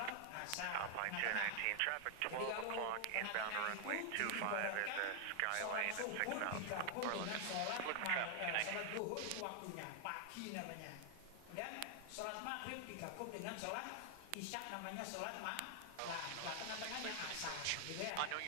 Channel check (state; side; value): different; both; correlation 0.00